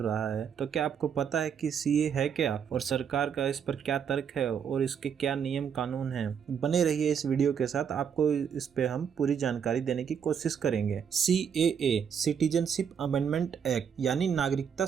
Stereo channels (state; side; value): quieter; left; 7.5 dB